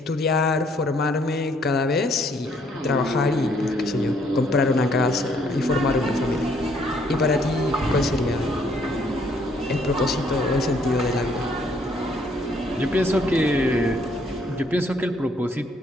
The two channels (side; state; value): both; normal; correlation 0.66